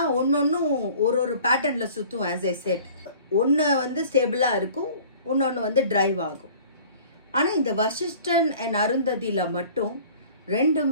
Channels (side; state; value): both; inverted; correlation -0.48